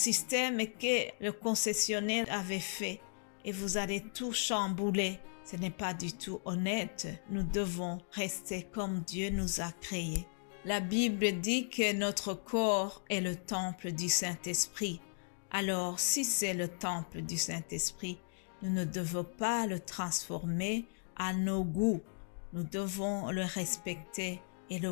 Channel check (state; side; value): silent; right; digital silence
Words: que le concessionnaire avait fait et vous allez tout chambouler. Ce n'est pas du tout honnête. Nous devons rester comme Dieu nous a créés. La Bible dit que notre corps est le temple du Saint-Esprit. Alors, si c'est le temple du Saint-Esprit, nous ne devons pas le transformer à nos goûts. Nous devons le respecter et